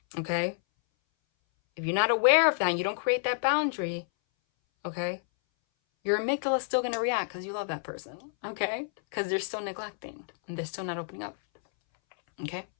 Okay? If you're not aware of that and you don't create that boundary, okay, your amygdala is still going to react because you love that person, okay? Because they're still neglecting and they're still not opening up, okay?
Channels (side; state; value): right; silent; 58 dB below the other